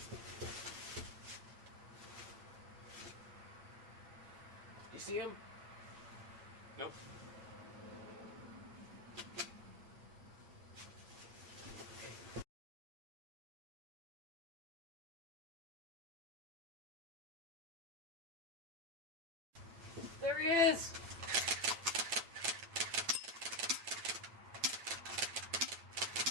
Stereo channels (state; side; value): late; left; 8.9 ms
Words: You see him? Nope. There he is!